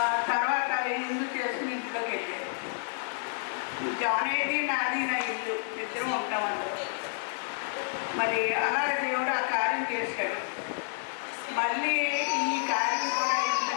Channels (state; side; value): silent; right; digital silence